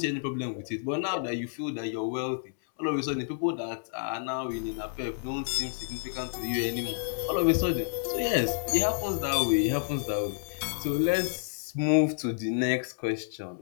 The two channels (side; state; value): right; silent; 58 dB below the other